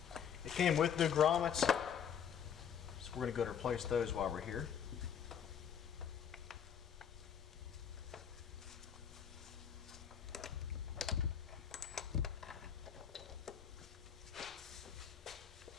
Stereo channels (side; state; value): right; quieter; 8.1 dB